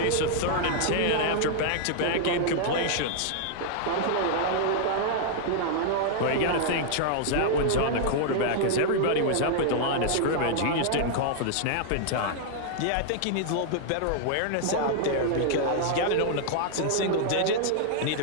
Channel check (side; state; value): both; different; correlation -0.01